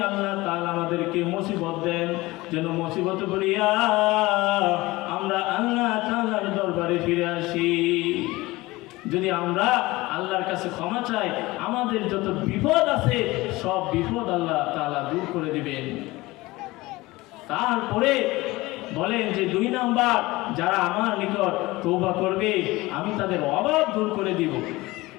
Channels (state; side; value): quieter; right; 20.4 dB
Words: আল্লাহ তাআলা আমাদেরকে মুসিবত দেন, যেন মুসিবত বলিয়া আমরা আল্লাহ তাআলার দরবারে ফিরে আসি। যদি আমরা আল্লাহর কাছে ক্ষমা চাই, আমাদের যত বিপদ আছে সব বিপদ আল্লাহ তাআলা দূর করে দিবেন। তারপরে বলেন যে 2 নাম্বার, যারা আমার নিকট তওবা করবে আমি তাদের অভাব দূর করে দিব।